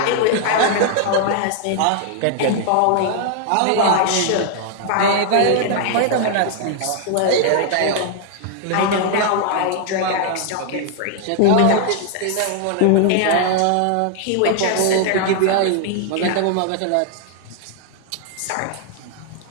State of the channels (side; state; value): both; different; correlation 0.00